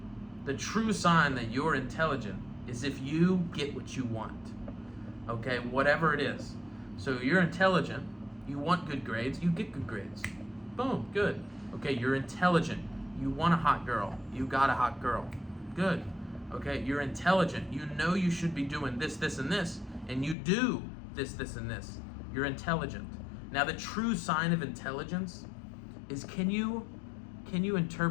the true sign that you're intelligent is if you get what you want. Okay, whatever it is. So you're intelligent, you want good grades, you get good grades. Boom, good. Okay, you're intelligent, you want a hot girl, you got a hot girl. Good. Okay, you're intelligent, you know you should be doing this, this, and this, and you do this, this, and this. You're intelligent. Now the true sign of intelligence is can you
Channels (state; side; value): drops out; right; at 20.4 s